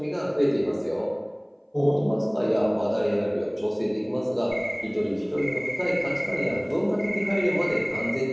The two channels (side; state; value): both; identical; correlation 1.00